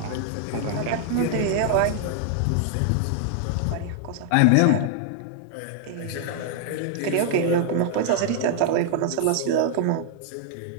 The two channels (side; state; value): both; different; correlation 0.00